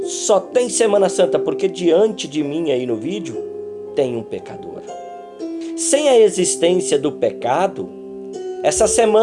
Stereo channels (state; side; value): identical; both; correlation 1.00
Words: Só tem Semana Santa porque diante de mim aí no vídeo tem um pecador. Sem a existência do pecado, essa